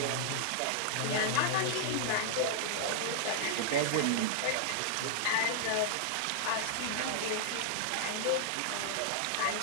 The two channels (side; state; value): both; different; correlation -0.01